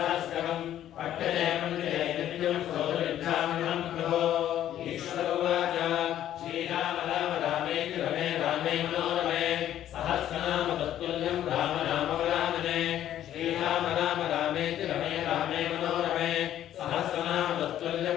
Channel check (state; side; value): quieter; right; 11.6 dB